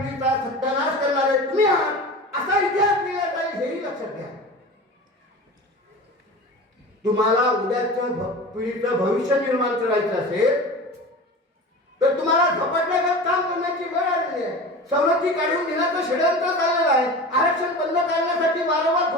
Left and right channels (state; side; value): normal; both; correlation 0.33